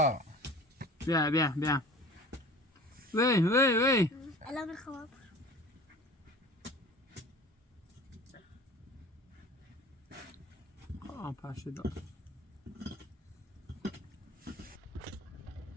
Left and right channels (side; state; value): both; normal; correlation 0.42